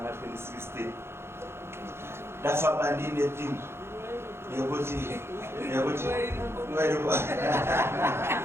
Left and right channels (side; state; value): left; late; 0.12 ms